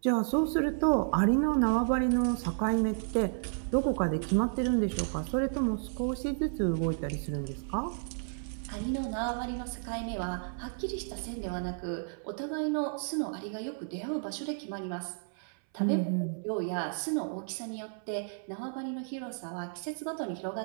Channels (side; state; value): left; silent; 56 dB below the other